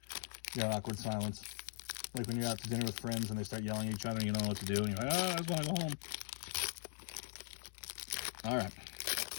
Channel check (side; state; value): right; silent; 51 dB below the other